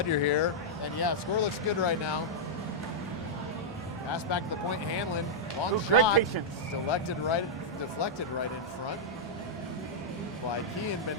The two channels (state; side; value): normal; both; correlation -0.07